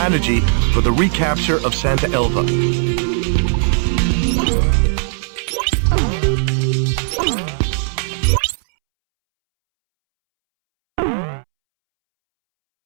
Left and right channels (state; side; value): silent; left; 68 dB below the other